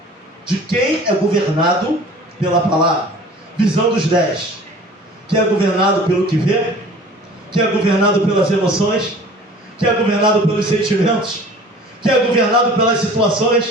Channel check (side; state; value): both; normal; correlation 0.46